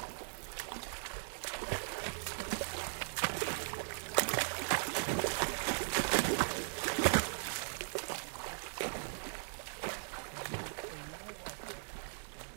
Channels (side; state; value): left; silent; digital silence